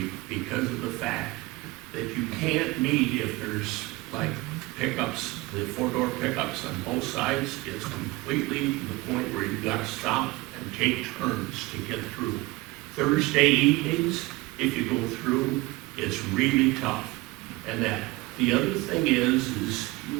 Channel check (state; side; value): quieter; left; 21.3 dB